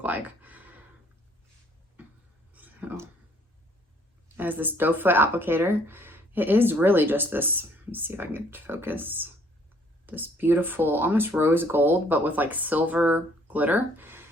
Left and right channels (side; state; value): both; normal; correlation 0.62